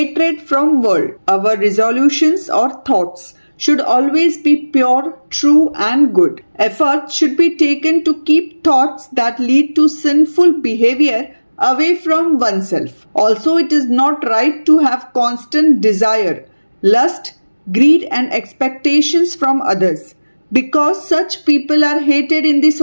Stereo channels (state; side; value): inverted; both; correlation -1.00